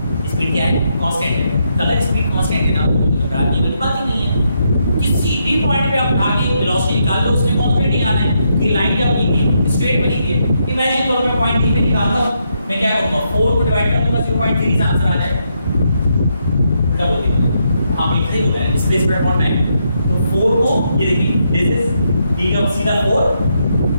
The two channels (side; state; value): both; inverted; correlation -0.79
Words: स्पीड क्या है कांस्टेंट है। तो अगर स्पीड कांस्टेंट है ना तो घबराने वाली बात ही नहीं है। किसी भी पॉइंट पे आप आगे वेलोसिटी निकाल लो, उसमें कांस्टेंट ही आना है। ये लाइन क्या बनेगी स्ट्रेट बनेगी। इमेजिन करो मैं पॉइंट डी पे निकालता हूं, मैं क्या करूंगा 4 को डिवाइड कर दूंगा 0.3 से आंसर आ जाएगा। उल्टा बोल दिया हां बिल्कुल सही बोला है, डिस्प्लेसमेंट अपॉन टाइम। तो 4 को ये देखिए दिस इज डी का सीधा 4